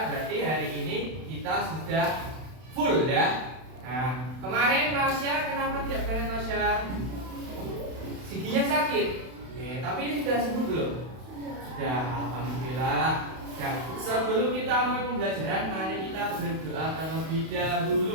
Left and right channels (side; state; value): left; late; 32 ms